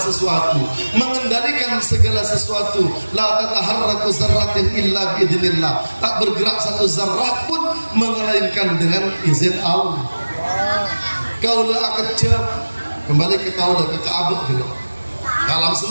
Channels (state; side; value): inverted; both; correlation -1.00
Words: mengendalikan segala sesuatu. La tataharraku zarratin illa biidznillah. Tak bergerak satu zarrah pun melainkan dengan izin Allah. Kaulah kecap kembali ke kaulah ke Ka'bah gitu. Alam